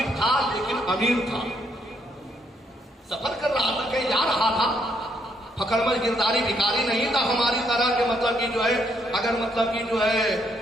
था लेकिन अमीर था, सफर कर रहा था, कहीं जा रहा था, फकड़मल गिरदारी भिखारी नहीं था हमारी तरह के। मतलब कि जो है अगर मतलब कि जो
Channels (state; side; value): normal; both; correlation 0.73